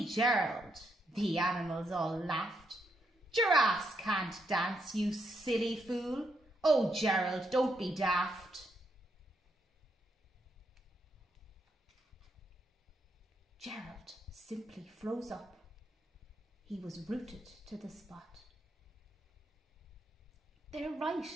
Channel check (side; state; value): both; normal; correlation 0.79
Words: Gerald!" The animals all laughed. "Giraffes can't dance, you silly fool. Oh, Gerald, don't be daft." Gerald simply froze up. He was rooted to the spot. "They're right,"